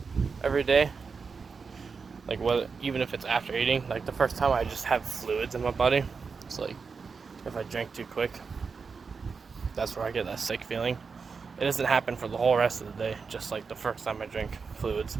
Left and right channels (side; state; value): left; quieter; 5.2 dB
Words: every day, like even if it's after eating, like the first time I just have fluids in my body. It's like if I drink too quick, that's where I get that sick feeling. It doesn't happen for the whole rest of the day, just like the first time I drink fluids